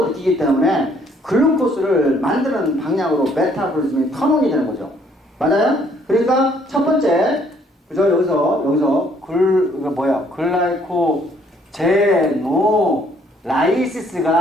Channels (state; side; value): normal; both; correlation 0.64